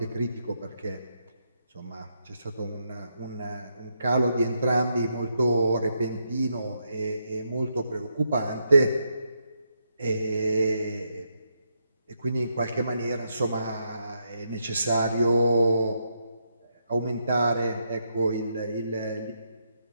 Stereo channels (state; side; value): inverted; both; correlation -0.80